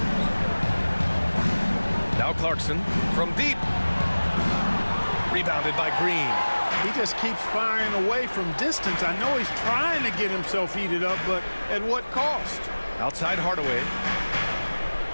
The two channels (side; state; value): both; inverted; correlation -1.00